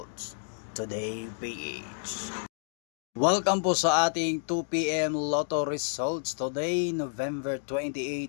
Today PH. Welcome po sa ating 2 PM Lotto results. Today, November 28,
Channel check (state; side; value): silent; right; digital silence